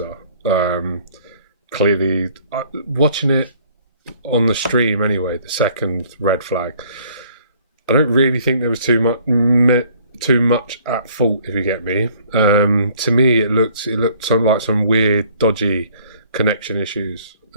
Clearly, watching it on the stream anyway, the second red flag, I don't really think there was too much at fault, if you get me. To me, it looked like some weird, dodgy connection issues.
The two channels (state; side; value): inverted; both; correlation -0.57